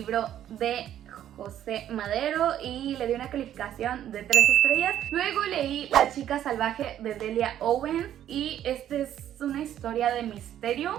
de José Madero y le di una calificación de 3 estrellas. Luego leí La chica salvaje de Delia Owens y esta es una historia de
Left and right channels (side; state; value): left; quieter; 11.2 dB